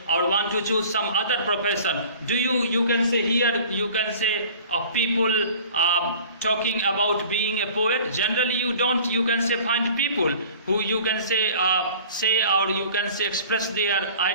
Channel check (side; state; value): both; inverted; correlation -0.45